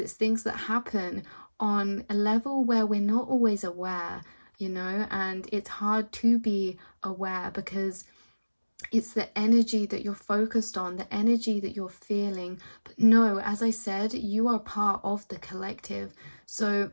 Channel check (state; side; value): inverted; both; correlation -1.00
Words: things that happen on a level where we're not always aware, you know, and it's hard to be aware because it's the energy that you're focused on, the energy that you're feeling. But no, as I said, you are part of the collective. So